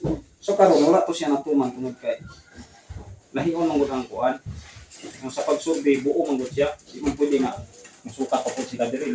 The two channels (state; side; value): identical; both; correlation 1.00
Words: so karon wala to siya natuman tungod kay lahion man gud ang kuan ang sa pagsurvey buo man gud siya di man pwede nga musukat pa pud sila